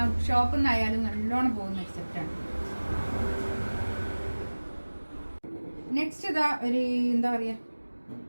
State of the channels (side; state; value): both; inverted; correlation -1.00